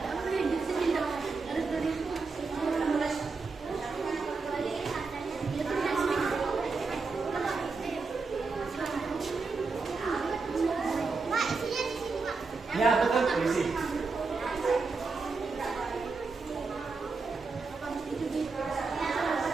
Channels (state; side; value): quieter; left; 4.3 dB